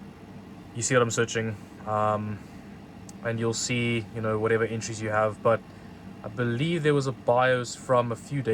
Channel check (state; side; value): identical; both; correlation 1.00